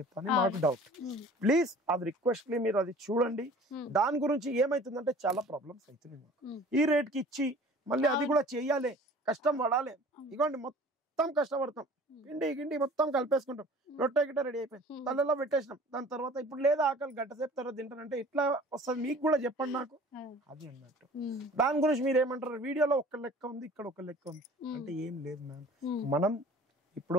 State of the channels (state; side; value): normal; both; correlation 0.46